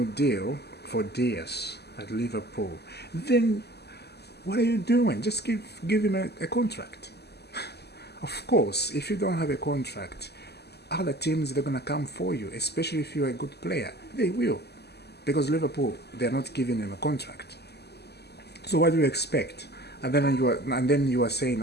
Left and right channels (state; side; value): late; right; 0.48 ms